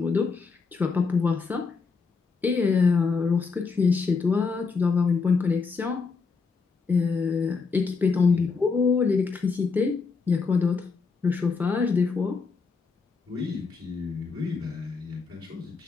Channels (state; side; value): quieter; right; 4.8 dB